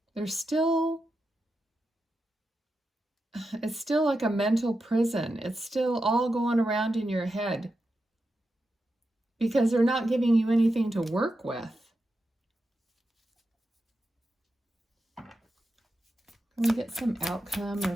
There's still... It's still like a mental prison. It's still all going around in your head because they're not giving you anything to work with. Can we get some outcome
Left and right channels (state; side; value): normal; both; correlation 0.88